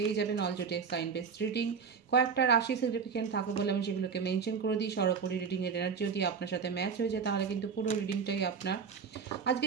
যাবেন। অল জোটেক সাইন বেসড রিডিং, কয়েকটা রাশি সিগনিফিকেন্ট থাকে বলে আমি সেগুলোকে মেনশন করে দিই। সরাসরি রিডিংয়ের এনার্জি যদি আপনার সাথে ম্যাচ হয়ে যায় তাহলে কিন্তু পুরো রিডিংটাই আপনার। আজকে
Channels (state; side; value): quieter; left; 6.0 dB